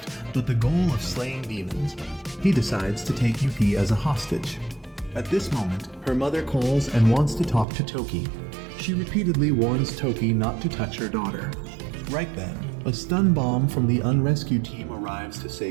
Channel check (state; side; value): drops out; left; at 7.7 s